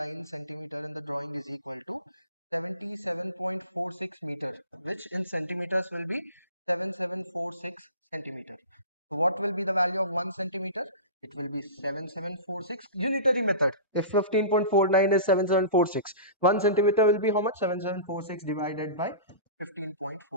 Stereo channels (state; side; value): inverted; both; correlation -0.34